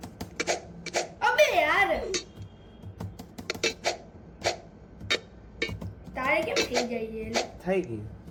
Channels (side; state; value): both; identical; correlation 1.00